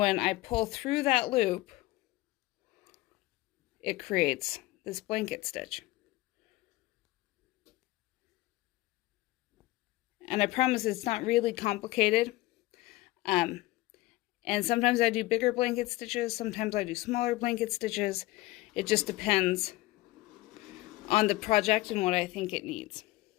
I pull through that loop, it creates this blanket stitch. And I promise it's not really complicated. And sometimes I do bigger blanket stitches, sometimes I do smaller blanket stitches. It just depends on the project and what I think it needs.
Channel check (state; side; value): quieter; right; 18.7 dB